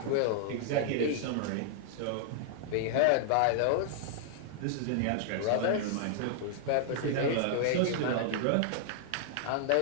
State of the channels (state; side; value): different; both; correlation -0.01